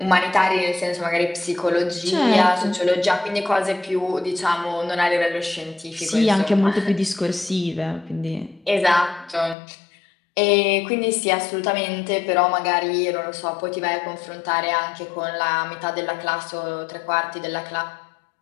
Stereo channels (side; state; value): right; drops out; at 9.6 s